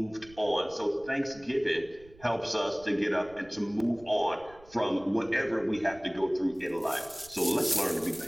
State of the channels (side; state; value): right; noise; rumble, 24 dB below the sound